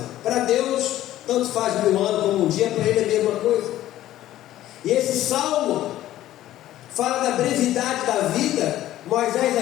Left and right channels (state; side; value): quieter; right; 13.8 dB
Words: Para Deus, tanto faz 1000 anos como um dia, para ele é a mesma coisa. E esse salmo fala da brevidade da vida. Moisés